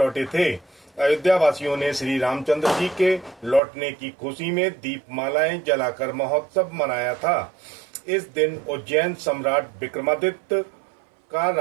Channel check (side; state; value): left; drops out; at 3.6 s